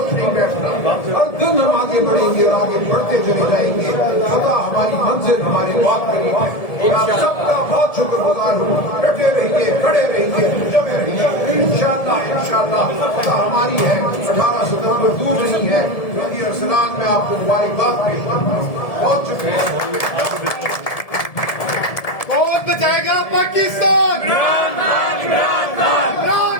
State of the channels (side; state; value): right; late; 1.7 ms